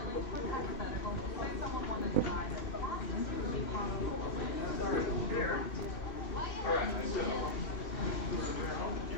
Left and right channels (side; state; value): right; late; 2.8 ms